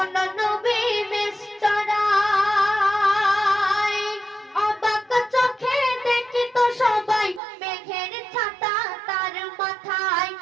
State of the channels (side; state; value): left; drops out; at 7.4 s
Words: নবী বেশ চড়ায়, অবাক চোখে দেখি তো সবাই মেঘের ছাতা তার মাথায়।